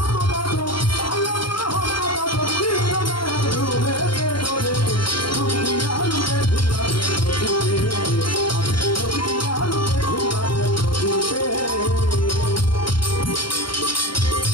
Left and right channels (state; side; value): late; right; 0.73 ms